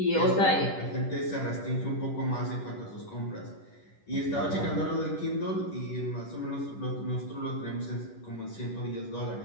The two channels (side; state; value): right; late; 10 ms